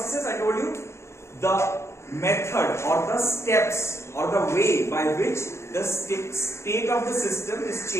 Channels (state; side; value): late; right; 0.13 ms